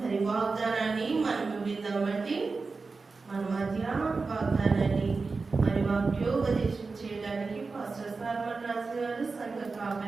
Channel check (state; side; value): quieter; left; 4.2 dB